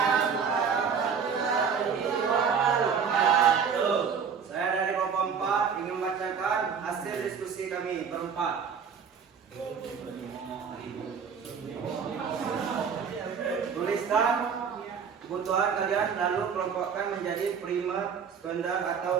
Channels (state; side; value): quieter; left; 6.5 dB